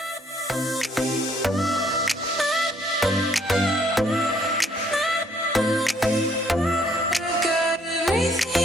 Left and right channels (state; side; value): normal; both; correlation 0.65